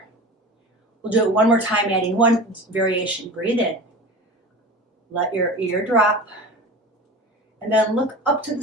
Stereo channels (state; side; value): normal; both; correlation 0.34